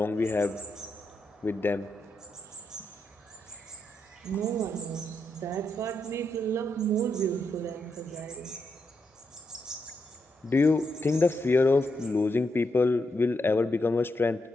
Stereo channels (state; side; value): normal; both; correlation 0.82